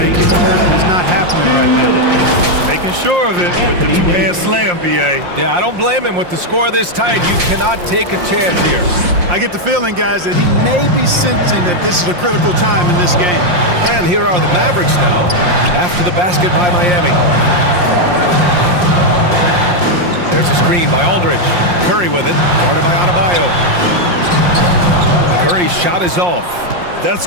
is not happening right now. Making sure of it with the two-hand slam, BA. Yeah, I don't blame him. With the score this tight, you cannot take a chance here. I get the feeling, guys, that he may be sensing that this is a critical time in this game. And here are the Mavericks now after the basket by Miami. There's a screen by Aldridge. Curry with it, guarded by Adebayo. Curry's shot is off. That's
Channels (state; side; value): late; left; 5.6 ms